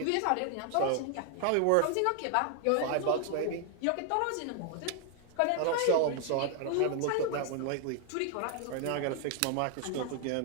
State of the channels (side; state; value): both; different; correlation 0.00